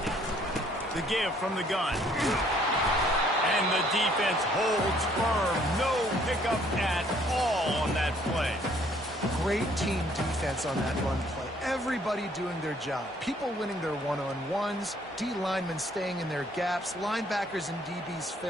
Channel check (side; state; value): both; normal; correlation 0.62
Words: The give from the gun. And the defense holds firm. No pickup at all on that play. Great team defense on that run play. Everybody doing their job. People winning their one-on-ones, D linemen staying in their gaps, linebackers and DBs